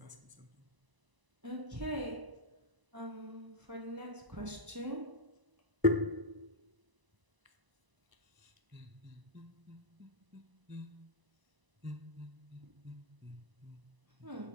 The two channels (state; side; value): late; left; 1.0 ms